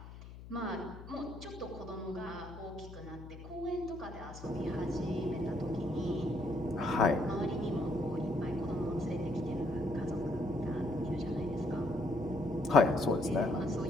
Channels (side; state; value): left; noise; hum, 14 dB below the sound